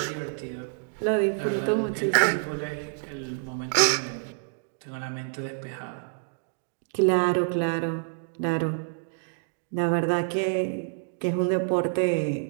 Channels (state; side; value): silent; left; digital silence